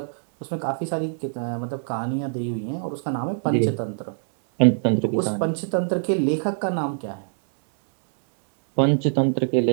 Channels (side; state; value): left; silent; digital silence